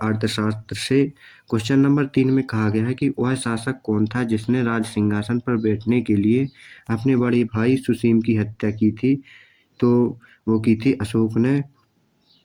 से। क्वेश्चन नंबर 3 में कहा गया है कि वह शासक कौन था जिसने राज सिंहासन पर बैठने के लिए अपने बड़े भाई सुसीम की हत्या की थी, तो वो की थी अशोक ने।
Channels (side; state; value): both; identical; correlation 1.00